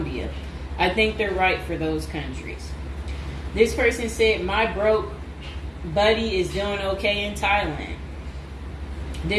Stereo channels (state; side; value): identical; both; correlation 1.00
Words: I think they're right for those countries. This person said, "My broke buddy is doing okay in Thailand."